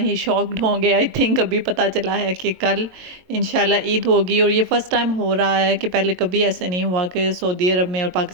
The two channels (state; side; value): late; left; 22 ms